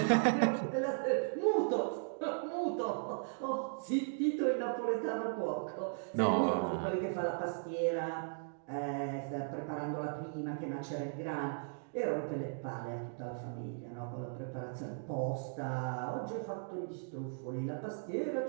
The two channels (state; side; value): silent; left; digital silence